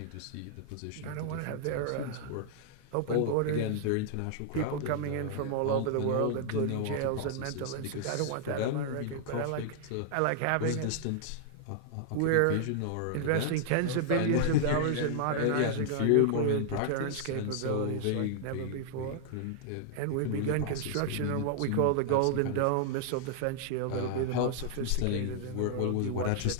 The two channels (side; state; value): both; different; correlation -0.01